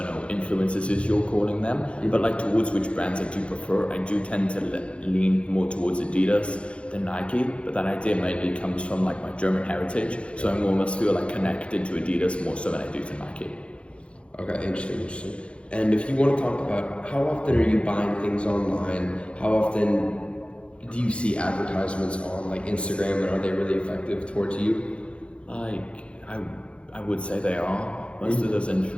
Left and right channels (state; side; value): late; right; 0.059 ms